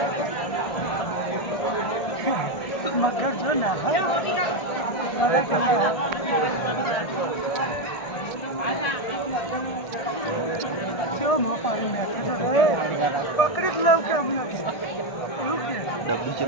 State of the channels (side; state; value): right; late; 1.6 ms